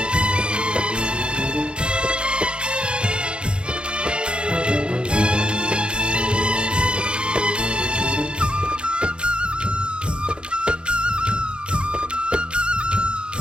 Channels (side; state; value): left; late; 0.054 ms